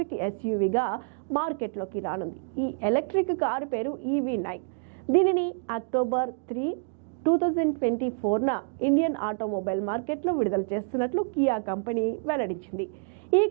SUVగా మార్కెట్లోకి రానుంది. ఈ ఎలక్ట్రిక్ కారు పేరు EV9. దీనిని అక్టోబర్ 3, 2024న ఇండియన్ ఆటోమొబైల్ మార్కెట్లో విడుదల చేస్తున్నట్లు కియా కంపెనీ వెల్లడించింది. ఈ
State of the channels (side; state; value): left; quieter; 39.5 dB